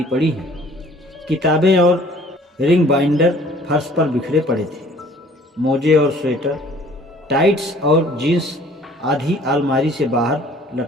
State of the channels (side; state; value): both; normal; correlation 0.53